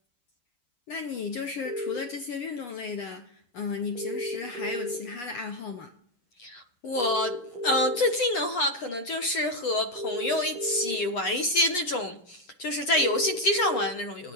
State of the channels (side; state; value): right; late; 8.3 ms